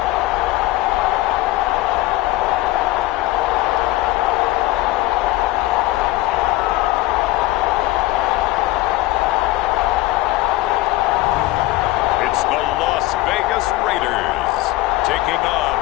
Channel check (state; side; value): quieter; right; 17.7 dB